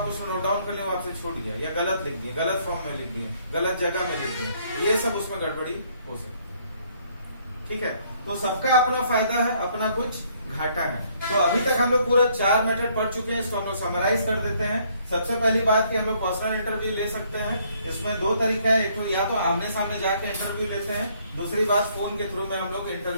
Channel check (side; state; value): both; inverted; correlation -0.66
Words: उसको नोट डाउन कर लिया, वो आपसे छूट गया, या गलत लिख दिए, गलत फॉर्म में लिख दिए, गलत जगह में लिख दिए, ये सब उसमें गड़बड़ी हो सकती है। ठीक है, तो सबका अपना फायदा है, अपना कुछ घाटा है। तो अभी तक हम लोग पूरा 4 मेथड पढ़ चुके हैं, इसको हम लोग समराइज कर देते हैं। सबसे पहली बात कि हम लोग पर्सनल इंटरव्यू ले सकते हैं। इसमें 2 तरीका है, एक तो या तो आमने सामने जाके इंटरव्यू लेते हैं, दूसरी बात फोन के थ्रू में हम लोग